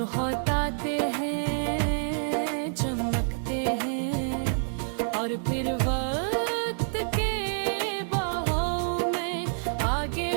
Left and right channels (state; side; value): silent; left; digital silence